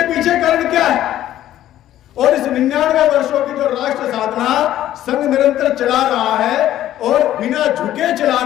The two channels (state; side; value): quieter; right; 12.8 dB